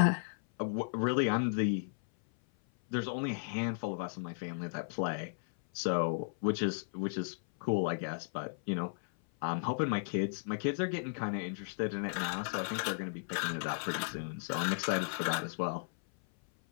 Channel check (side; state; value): right; silent; 55 dB below the other